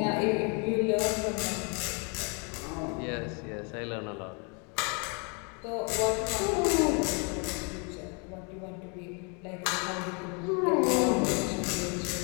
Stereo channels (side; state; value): right; quieter; 35.0 dB